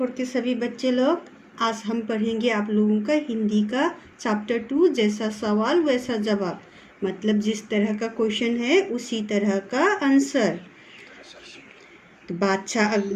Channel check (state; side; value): identical; both; correlation 1.00